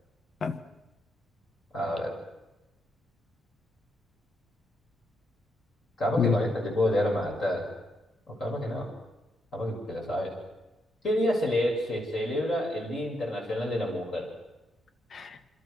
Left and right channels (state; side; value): normal; both; correlation 0.79